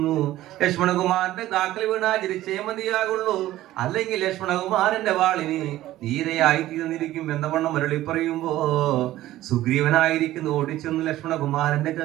ലക്ഷ്മണകുമാരന്റെ കാക്കൽ വീണാ ചിരിച്ചേ മതിയാകുള്ളൂ, അല്ലെങ്കിൽ ലക്ഷ്മണകുമാരന്റെ വാളിന് നീരയായി തീർന്നിരിക്കും എന്ന വണ്ണം മരളി പറയുമ്പോ സുഗ്രീവനായിരിക്കുന്നു ഓടിച്ചെന്നു ലക്ഷ്മണകുമാരന്റെ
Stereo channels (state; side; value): quieter; left; 15.0 dB